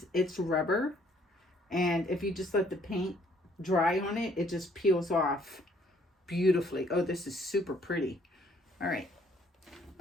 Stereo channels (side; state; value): both; normal; correlation 0.63